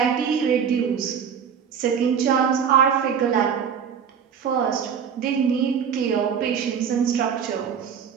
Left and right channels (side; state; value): left; quieter; 7.5 dB